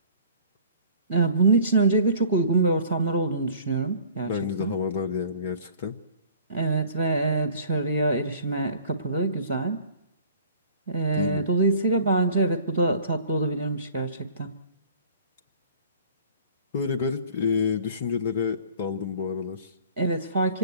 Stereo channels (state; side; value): inverted; both; correlation -0.49